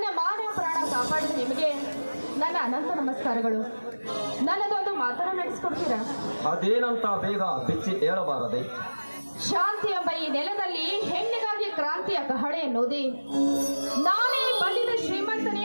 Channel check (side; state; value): both; inverted; correlation -1.00